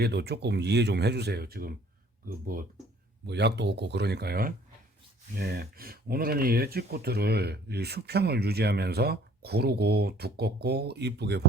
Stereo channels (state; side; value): normal; both; correlation 0.56